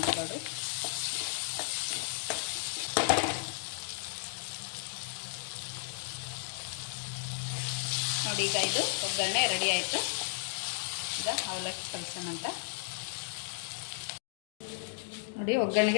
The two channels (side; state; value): right; silent; digital silence